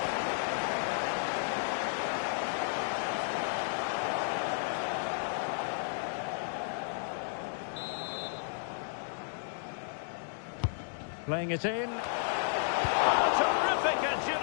Playing it in. Oh, terrific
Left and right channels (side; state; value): right; silent; digital silence